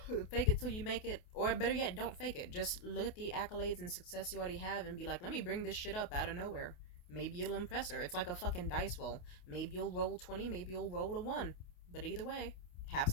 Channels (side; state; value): right; late; 28 ms